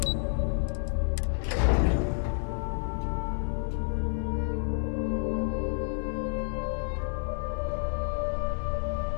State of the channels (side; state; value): right; silent; 58 dB below the other